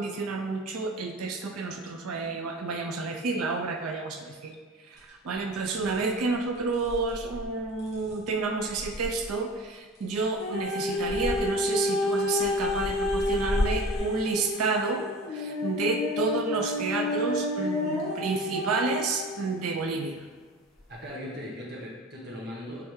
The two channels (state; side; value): normal; both; correlation 0.36